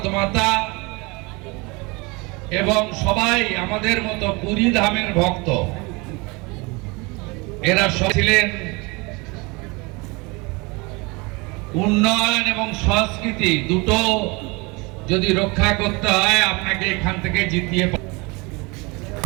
মাতা এবং সবাই আমাদের মতো পুরী ধামের ভক্ত, এরা ছিলেন। উন্নয়ন এবং সংস্কৃতি দুটো যদি রক্ষা করতে হয়, আপনাকে এখান থেকে জিতিয়ে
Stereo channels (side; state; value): left; quieter; 26.7 dB